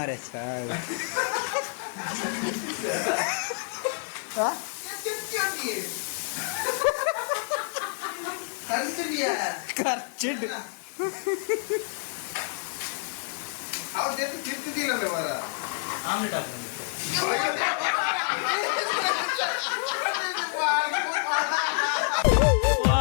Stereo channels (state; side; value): silent; right; digital silence